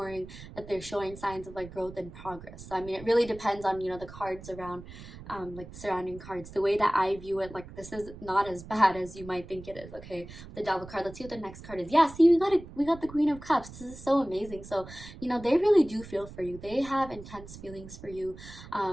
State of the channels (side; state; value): right; noise; rumble, 15 dB below the sound